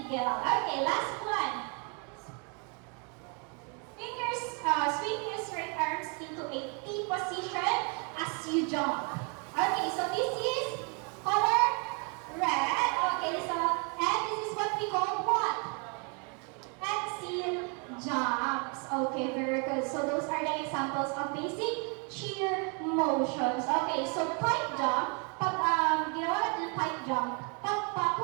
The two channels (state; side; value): quieter; left; 36.2 dB